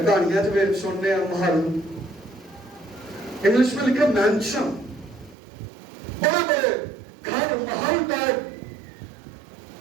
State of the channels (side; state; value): left; drops out; at 5.4 s